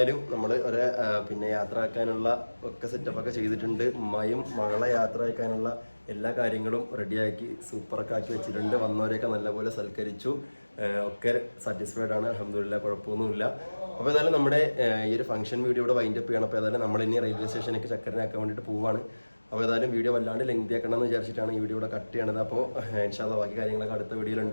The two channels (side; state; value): both; inverted; correlation -1.00